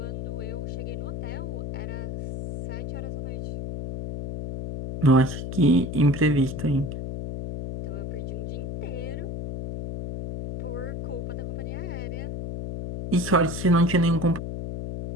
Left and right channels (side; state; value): left; noise; hum, 5 dB below the sound